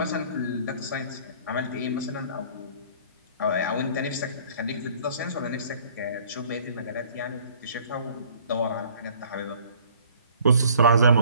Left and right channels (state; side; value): inverted; both; correlation -0.55